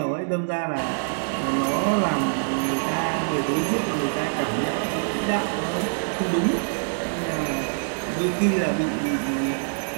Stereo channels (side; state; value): left; silent; digital silence